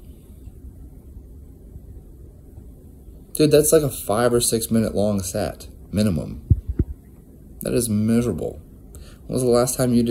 Dude, that's like a 5 or 6 minute long set, minimum. That is miserable. When was the last time you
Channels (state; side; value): identical; both; correlation 1.00